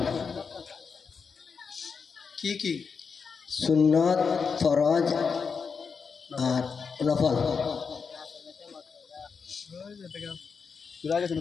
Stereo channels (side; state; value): right; quieter; 5.6 dB